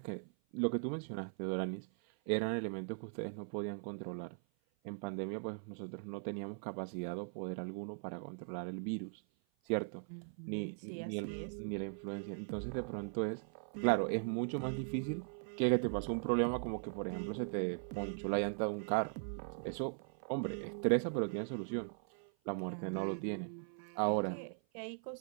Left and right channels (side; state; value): left; silent; 51 dB below the other